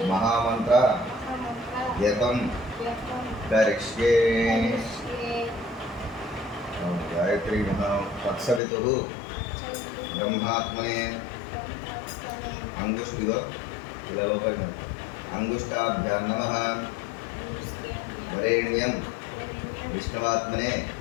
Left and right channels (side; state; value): right; drops out; at 8.6 s